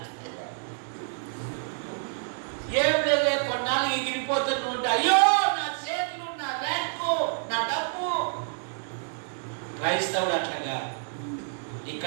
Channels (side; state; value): left; silent; digital silence